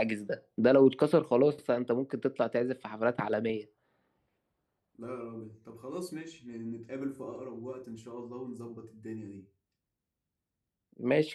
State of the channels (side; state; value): both; identical; correlation 1.00